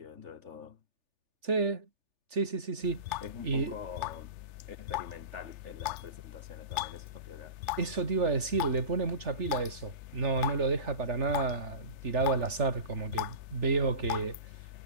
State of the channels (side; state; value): left; late; 3.4 ms